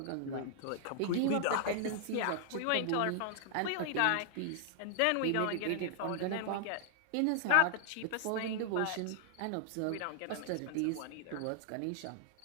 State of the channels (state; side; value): different; both; correlation 0.00